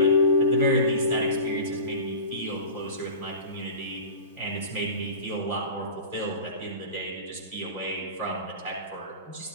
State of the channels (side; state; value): both; inverted; correlation -0.35